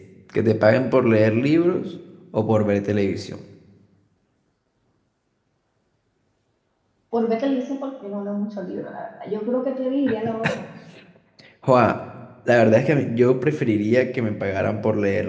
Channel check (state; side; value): identical; both; correlation 1.00